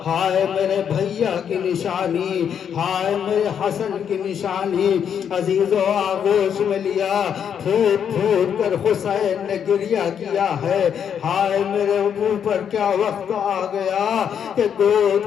ہائے میرے بھیا کی نشانی، ہائے میرے حسن کی نشانی، عزیزوں آغوش میں لیا۔ پھوٹ پھوٹ کر حسین نے گریہ کیا ہے۔ ہائے میرے اوپر کیا وقت آ گیا کہ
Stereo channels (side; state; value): right; quieter; 8.2 dB